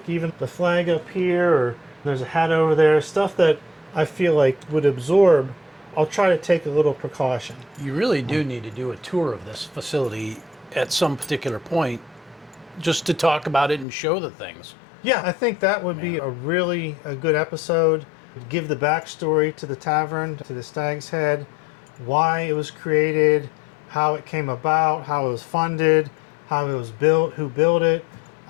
even the flag up here, or there's a hat over there, stuff that I feel like would absorb. I'll try to take a little precaution. You really do need to do a tour of this facility at some particular point just to talk about it and show the things. Yeah, I think that would be a good episode. Give the backstory to the tavern, to the Stag's Head, why it was created, how it came about, how it was funded, how it was built, who built it.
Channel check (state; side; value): drops out; right; at 13.9 s